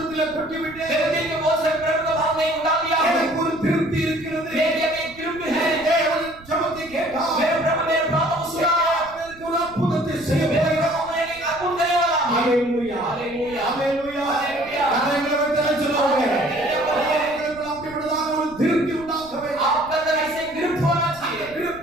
கொட்டி விட்டேன். मेरे दिल के बहुत सारे प्रभु का भाव नहीं उठा लिया है। எனக்கு ஒரு திருப்தி இருக்கிறது. मेरे लिए एक तृप्त है। தேவன் ஜெபத்தை கேட்டார். मेरे प्रभु मेरे प्रार्थना को सुना। எனக்கு ஒரு அற்புதத்தை செய்ய मेरे போகிறார். प्रभु मेरे लिए अद्भुत करने वाला है। ஹalleluya, हालेलुया, ஹalleluya, हालेलुया। கரங்களை வைத்து சொல்லுங்க. உங்களுக்கு அப்படிப்பட்டதான ஒரு திருப்தி உண்டாக்க வேண்டும். आपका अंदर ऐसे तृप्त होना चाहिए।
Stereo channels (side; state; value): right; noise; rumble, 22 dB below the sound